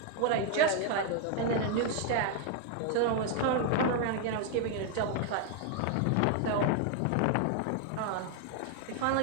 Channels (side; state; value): both; different; correlation 0.00